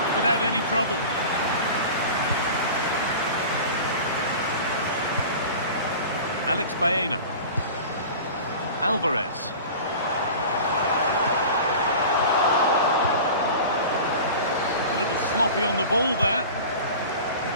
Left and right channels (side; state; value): both; inverted; correlation -0.36